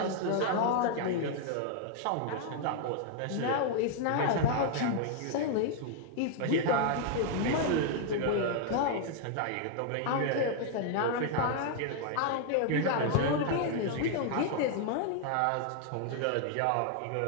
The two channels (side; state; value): both; different; correlation 0.00